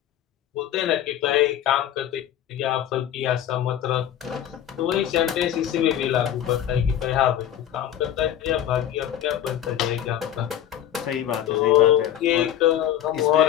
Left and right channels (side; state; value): right; quieter; 11.0 dB